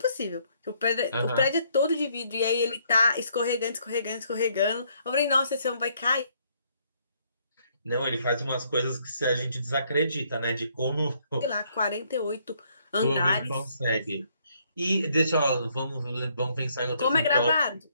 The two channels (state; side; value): inverted; both; correlation -0.69